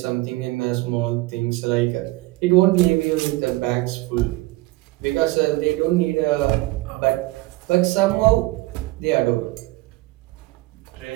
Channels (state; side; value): quieter; left; 20.2 dB